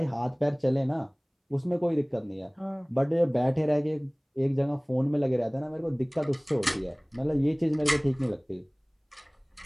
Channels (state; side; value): identical; both; correlation 1.00